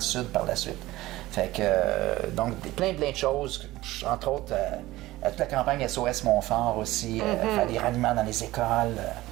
sud par la suite. Fait que, donc, plein de choses, entre autres, toute la campagne SOS Montfort aussi, faire des ralliements dans les écoles.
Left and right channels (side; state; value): left; quieter; 17.5 dB